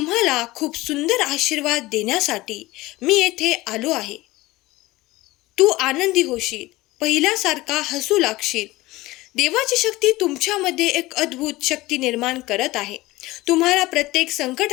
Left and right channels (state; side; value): quieter; right; 19.2 dB